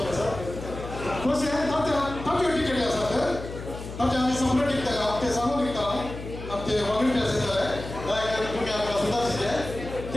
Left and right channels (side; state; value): left; noise; hum, 10 dB below the sound